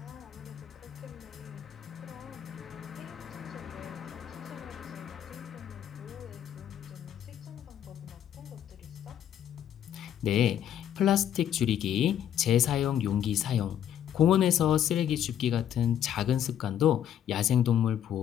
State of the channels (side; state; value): right; quieter; 10.1 dB